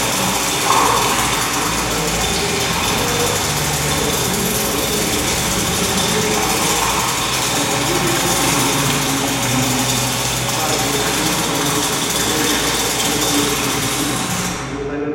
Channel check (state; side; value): identical; both; correlation 1.00